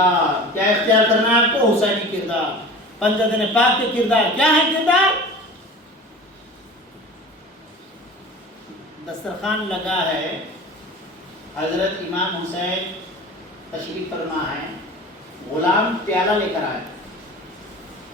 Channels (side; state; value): both; normal; correlation 0.37